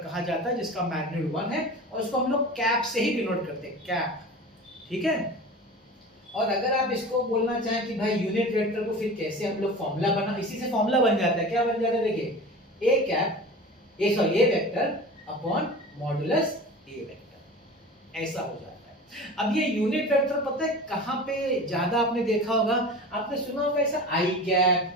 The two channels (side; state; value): both; normal; correlation 0.35